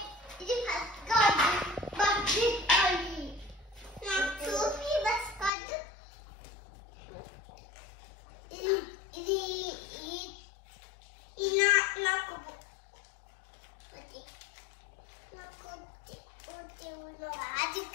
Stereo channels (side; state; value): right; drops out; at 5.5 s